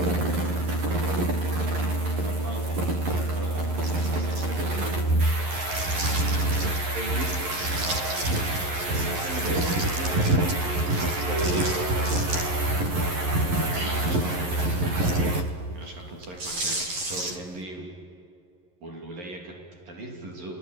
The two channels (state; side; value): late; left; 11 ms